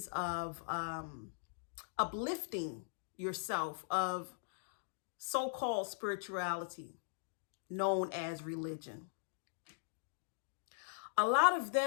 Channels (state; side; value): silent; right; digital silence